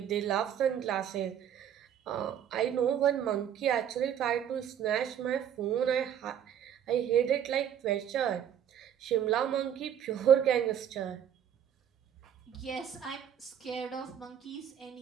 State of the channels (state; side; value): quieter; left; 9.4 dB